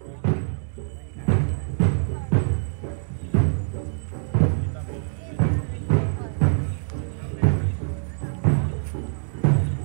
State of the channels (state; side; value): silent; left; digital silence